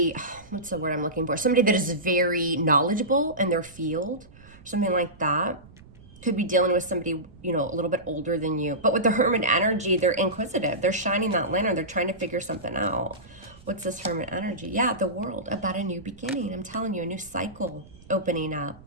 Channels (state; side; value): noise; right; rumble, 22 dB below the sound